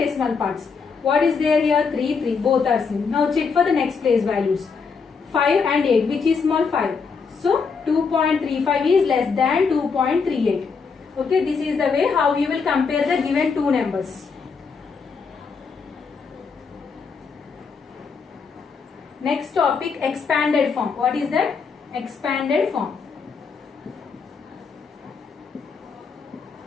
parts. What is there here? 3, 3. Both are same. Now check for the next place values. 5 and 8. Which is small? 5. So 2.35 is less than 2.38. Okay, this is the way how you will compare the given two numbers. Next topic, expanded form. What is that? Expanded form.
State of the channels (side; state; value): right; quieter; 5.3 dB